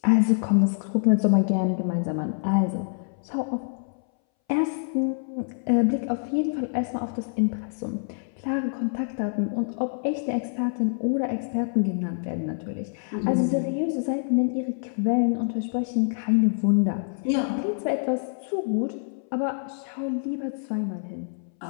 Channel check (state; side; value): silent; right; 61 dB below the other